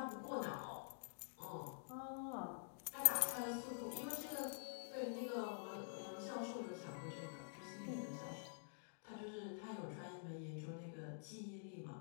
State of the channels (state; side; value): silent; right; digital silence